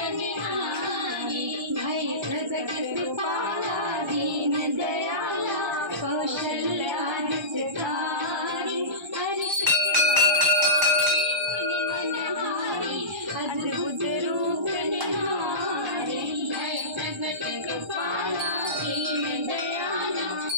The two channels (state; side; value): late; left; 1.3 ms